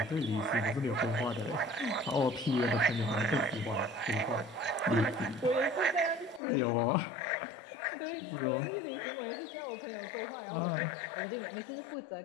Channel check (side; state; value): right; drops out; at 6.4 s